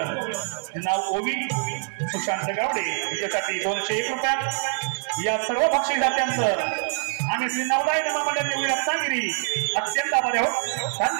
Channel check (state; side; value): silent; left; 61 dB below the other